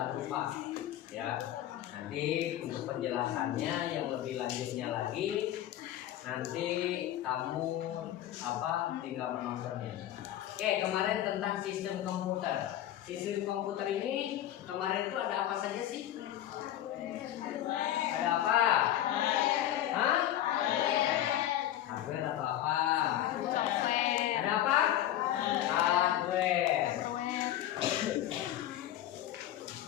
lupa, ya. Nanti untuk penjelasannya yang lebih lanjutnya lagi, nanti kamu tinggal menontonnya. Oke, kemarin tentang sistem komputer. Sistem komputer ini kemarin itu ada apa saja sih? Ada apa? Hah? Hardware atau apa? Ada apa? Hardware.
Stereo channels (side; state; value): right; quieter; 12.5 dB